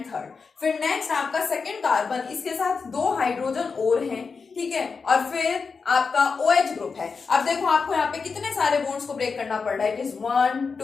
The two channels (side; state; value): right; quieter; 5.0 dB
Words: third. फिर नेक्स्ट आपका सेकेंड कार्बन, इसके साथ 2 हाइड्रोजन और हैं. ठीक है, और फिर आपका OH ग्रुप है. अब देखो आपको यहाँ पे कितने सारे बॉन्ड्स को ब्रेक करना पड़ रहा है. इट इज 1